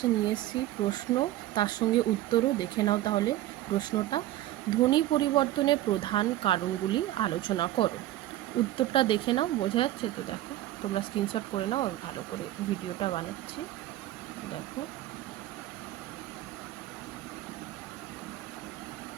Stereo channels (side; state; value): left; quieter; 14.9 dB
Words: নিয়ে এসেছি প্রশ্ন, তার সঙ্গে উত্তরও। দেখে নাও তাহলে প্রশ্নটা। ধ্বনি পরিবর্তনের প্রধান কারণগুলি আলোচনা করো। উত্তরটা দেখে নাও, বোঝা যাচ্ছে তো? দেখো, তোমরা স্ক্রিনশট করে নাও, আমি ভালো করে ভিডিওটা বানাচ্ছি। দেখো,